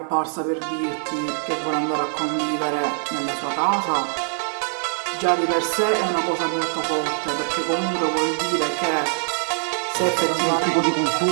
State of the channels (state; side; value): silent; left; 63 dB below the other